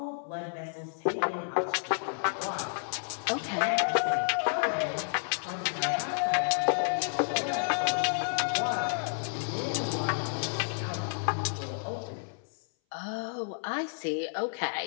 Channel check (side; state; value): right; silent; 57 dB below the other